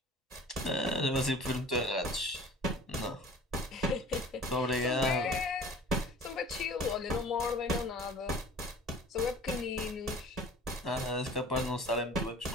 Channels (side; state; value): both; normal; correlation 0.46